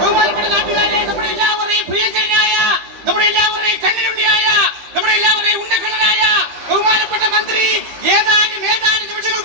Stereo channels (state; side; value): late; left; 15 ms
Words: ബഹുമാനപ്പെട്ട നാട്ടുകാരെ, നമ്മുടെ എല്ലാവരെയും പ്രിയങ്കരനായ, നമ്മുടെ എല്ലാവരെയും കണ്ണിലുണ്ണിയായ, നമ്മുടെ എല്ലാവരെയും ഉണ്ടക്കണ്ണനായ ബഹുമാനപ്പെട്ട മന്ത്രി ഏതാനും